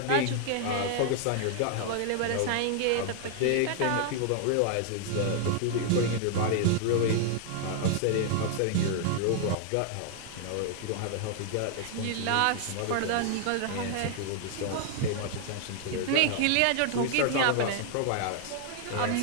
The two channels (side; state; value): both; different; correlation 0.00